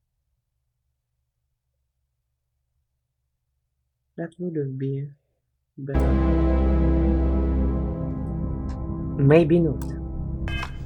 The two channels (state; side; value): identical; both; correlation 1.00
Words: That wouldn't be better. Maybe not.